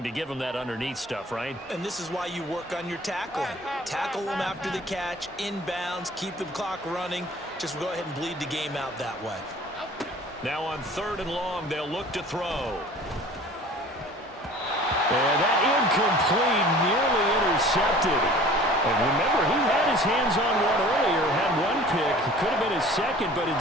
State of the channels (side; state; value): both; normal; correlation 0.46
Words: to give them that underneath stuff, right? And this is why you work on your tackling. Tackle them after the catch, inbounds, keep the clock running. Just go ahead and bleed the game out that way. Now on 3rd and long, they'll look to throw. And that incomplete, nearly intercepted. And remember, he had his hands on one earlier, had one pick. Could have been his second, but